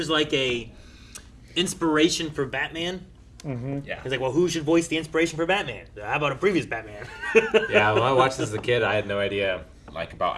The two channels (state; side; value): identical; both; correlation 1.00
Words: like a inspiration for Batman. yeah. It's like, well, who should voice the inspiration for Batman? How about a previous Batman? Yeah, when I watched this as a kid, I had no idea like about